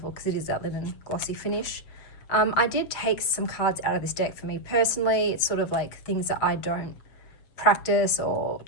because it is that linen glossy finish. I did take some cards out of this deck for me personally. It's sort of like things that I don't practice or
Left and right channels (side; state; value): right; late; 7.2 ms